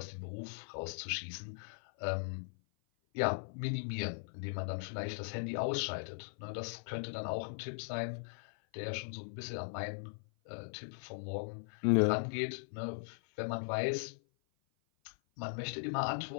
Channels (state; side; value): silent; right; 52 dB below the other